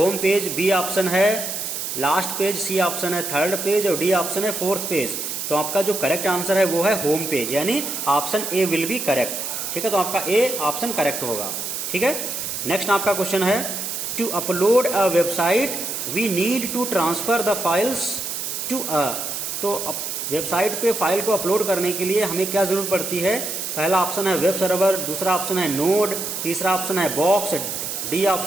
पेज, बी ऑप्शन है लास्ट पेज, सी ऑप्शन है थर्ड पेज और डी ऑप्शन है फोर्थ पेज। तो आपका जो करेक्ट आंसर है वो है होम पेज, यानी option A will be correct, ठीक है। तो आपका ए ऑप्शन करेक्ट होगा, ठीक है। नेक्स्ट आपका क्वेश्चन है, to upload a website we need to transfer the files to a. तो वेबसाइट पे फाइल को अपलोड करने के लिए हमें क्या जरूरत पड़ती है? पहला ऑप्शन है वेब सर्वर, दूसरा ऑप्शन है नोड, तीसरा ऑप्शन है बॉक्स, डी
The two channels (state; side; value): noise; right; hiss, 4 dB below the sound